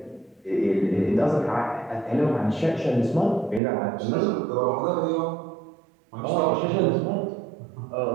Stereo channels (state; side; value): drops out; left; at 3.6 s